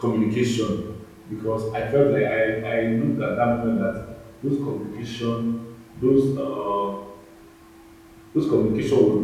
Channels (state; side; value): identical; both; correlation 1.00